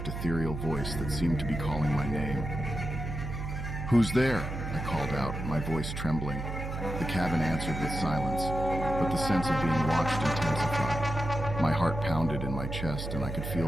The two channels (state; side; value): noise; right; hum, 5 dB below the sound